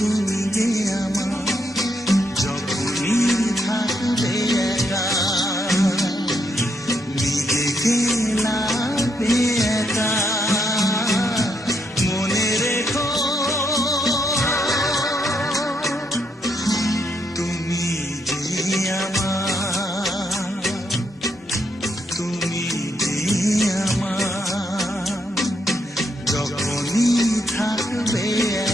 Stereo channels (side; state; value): both; normal; correlation 0.77